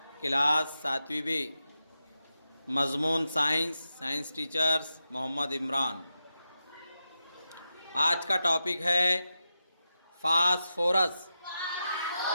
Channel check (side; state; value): both; inverted; correlation -0.89